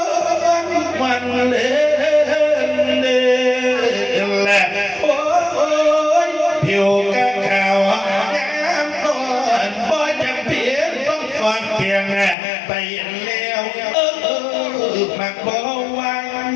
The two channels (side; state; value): right; drops out; at 12.4 s